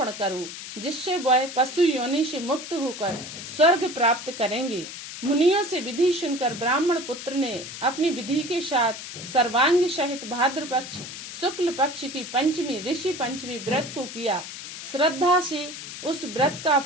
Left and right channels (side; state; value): left; noise; hiss, 10 dB below the sound